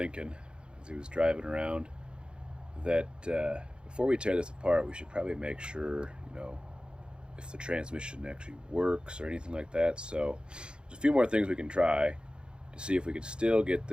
as he was driving around that before we tear this apart, we should probably make sure, if the transmission actually works or anything like that. So there's a few more things we can try to see if we could still get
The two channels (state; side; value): late; left; 0.052 ms